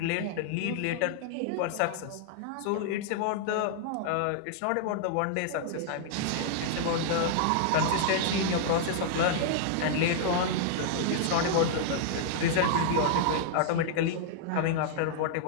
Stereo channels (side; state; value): both; different; correlation -0.01